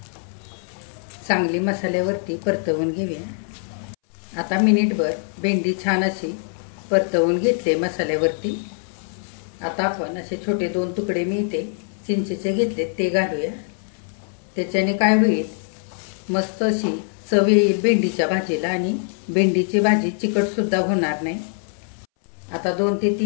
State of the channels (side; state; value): right; silent; 63 dB below the other